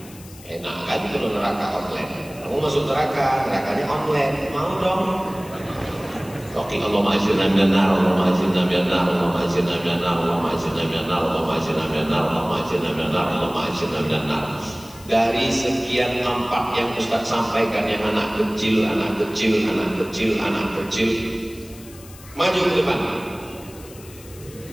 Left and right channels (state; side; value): noise; left; hiss, 20 dB below the sound